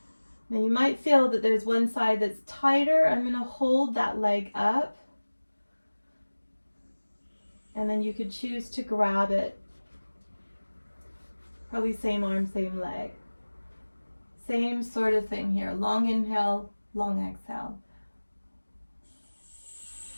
Now you might feel that there's one side that's tighter. I'm going to hold that leg up, and then you could choose to grab it. Probably same arm, same leg. Same sort of thing here. Long inhale, long exhale.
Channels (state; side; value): inverted; both; correlation -1.00